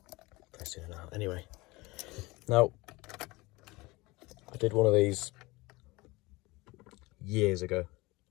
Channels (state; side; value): quieter; right; 22.3 dB